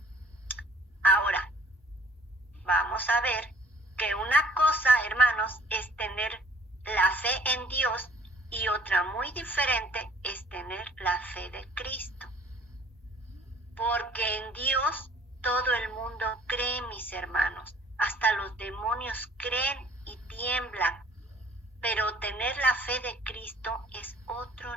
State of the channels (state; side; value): normal; both; correlation 0.56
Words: Ahora, vamos a ver que una cosa, hermanos, es tener la fe en Dios y otra muy diferente es tener la fe de Cristo. Porque en Dios todo el mundo cree, mis hermanos. Hasta los demonios creen y tiemblan. Pero tener la fe de Cristo es